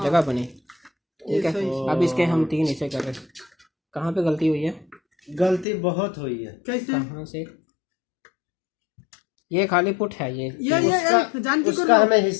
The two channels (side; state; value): right; drops out; at 5.7 s